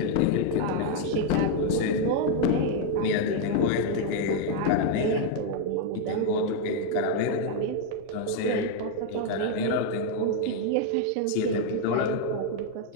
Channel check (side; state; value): both; different; correlation 0.00